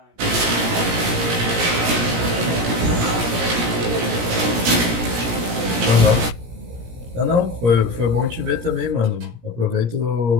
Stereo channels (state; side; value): late; left; 17 ms